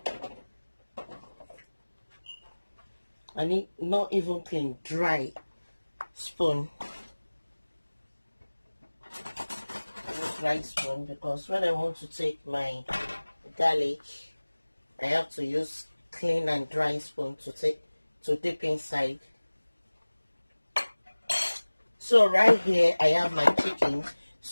I need not even clean, dry spoon. Dry spoon, because when I want to take my garlic, I have to use clean and dry spoon to dip inside. So right here I have my chicken.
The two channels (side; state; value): both; inverted; correlation -1.00